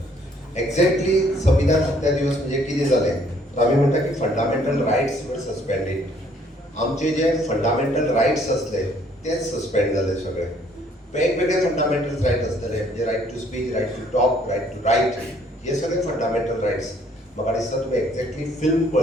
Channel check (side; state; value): both; normal; correlation 0.62